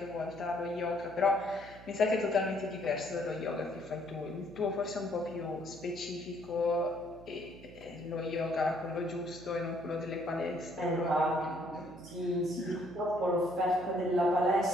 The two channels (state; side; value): noise; right; hum, 19 dB below the sound